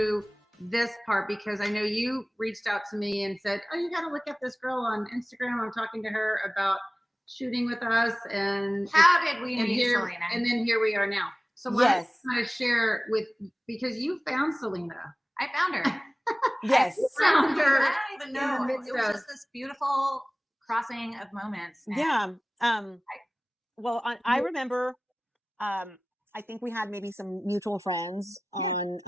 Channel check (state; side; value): normal; both; correlation 0.98